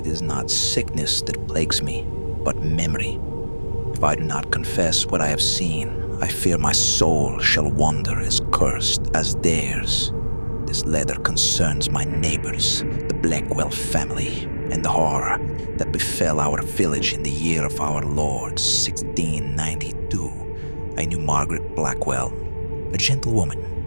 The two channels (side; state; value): both; inverted; correlation -1.00